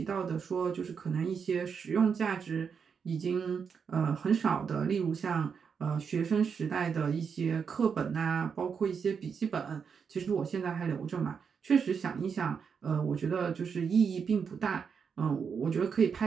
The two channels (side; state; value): left; quieter; 6.4 dB